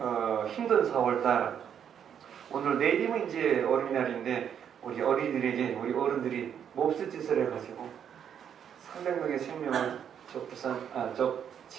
힘든 4월달 오늘 내일이면 이제 어린이날인데 우리 어린이들에게 우리 어른들이 몹쓸 짓을 해가지고 300명의 생명을 저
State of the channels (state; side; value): quieter; left; 8.5 dB